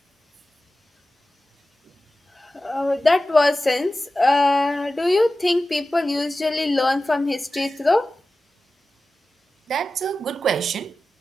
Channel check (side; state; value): both; normal; correlation 0.94